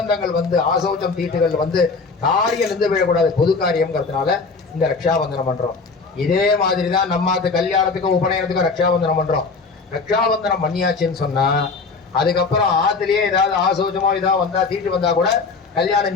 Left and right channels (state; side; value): quieter; right; 4.5 dB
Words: வந்து ஆசௌச்சம் தீட்டுகள் வந்து காரியம் இருந்து விடக்கூடாது, பொது காரியம்ங்கிறதுனால இந்த ரக்ஷாபந்தனம் பண்றோம். இதே மாதிரிதான் நம்ம கல்யாணத்துக்கும் உபநயனத்துக்கும் ரக்ஷாபந்தனம் பண்றோம். ரக்ஷாபந்தனம் பண்ணியாச்சுன்னு சொன்னா அதுக்கப்புறம் ஆத்துலயே ஏதாவது ஆசௌச்சமோ ஏதாவது வந்தா தீட்டு வந்தா கூட கல்யாணம்